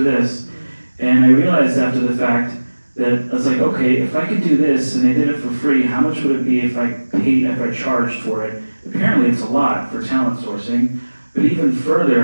And I realized after the fact that I was like, okay, if I could do this and I did it for free, how much would it be if I charged for it? Apparently it's a lot for talent sourcing. But even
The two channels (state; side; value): inverted; both; correlation -1.00